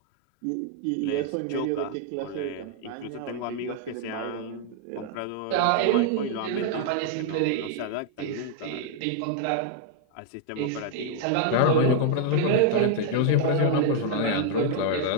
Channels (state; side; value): different; both; correlation 0.00